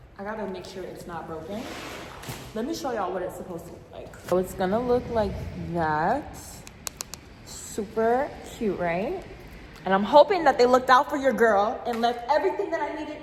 I gotta make sure it's not broken. Let me show y'all what it's supposed to look like. So it's gonna look like that. Super cute, right? And I'm hoping that they looked out for your girl and left everything that I needed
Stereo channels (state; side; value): identical; both; correlation 1.00